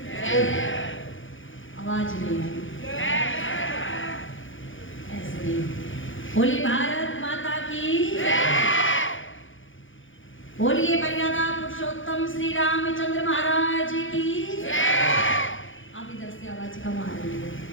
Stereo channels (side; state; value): right; late; 0.57 ms